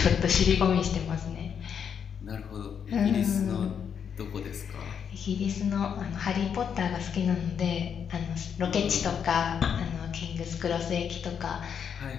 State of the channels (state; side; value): quieter; right; 7.5 dB